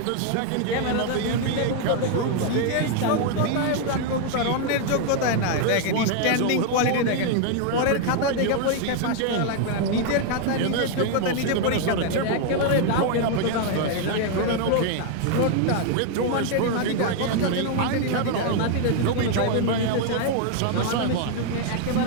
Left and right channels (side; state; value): both; different; correlation 0.00